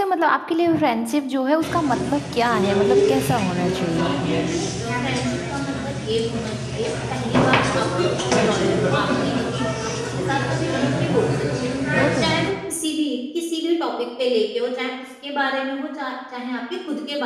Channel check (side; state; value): both; identical; correlation 1.00